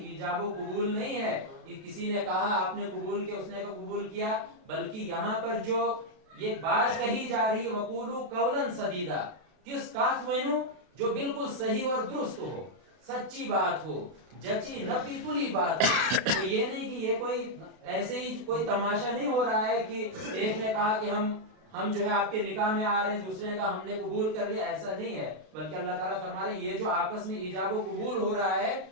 ایجاب و قبول نہیں ہے کہ کسی نے کہا آپ نے قبول کیا، اس نے قبول کیا، بلکہ یہاں پر جو یہ بات کہی جا رہی ہے وقولوا قولا سدیدا، کس بات وینو جو بالکل صحیح اور درست ہو، سچی بات ہو، جچی نپی تلی بات ہو. تو یہ نہیں کہ یہ کوئی ایسے ہی کوئی تماشا نہیں ہو رہا ہے کہ ایک نے کہا کہ ہم جو ہے آپ کے نکاح میں آ رہے ہیں، دوسرے نے کہا ہم نے قبول کر لیا. ایسا نہیں ہے، بلکہ اللہ تعالیٰ فرما رہے ہیں یہ جو آپس میں ایجاب و قبول ہو رہا ہے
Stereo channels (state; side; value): late; left; 32 ms